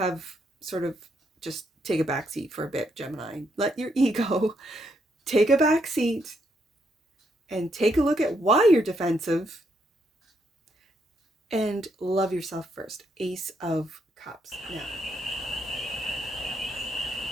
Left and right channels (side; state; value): both; normal; correlation 0.76